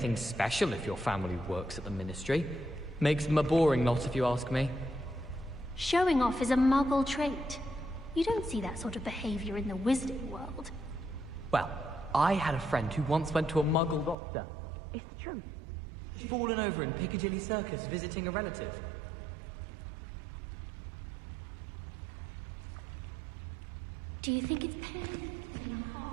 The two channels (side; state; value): left; drops out; at 14.2 s